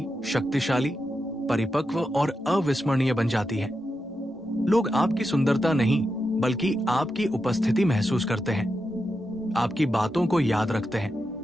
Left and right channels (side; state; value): both; normal; correlation 0.87